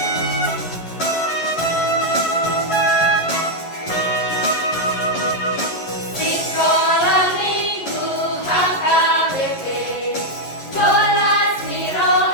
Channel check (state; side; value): late; right; 11 ms